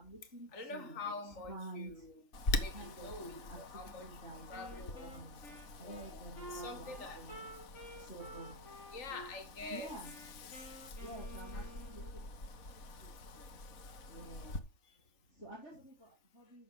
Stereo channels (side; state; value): right; late; 3.5 ms